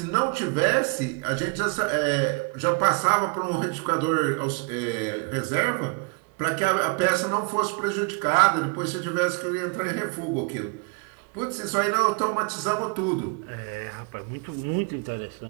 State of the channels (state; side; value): quieter; left; 33.8 dB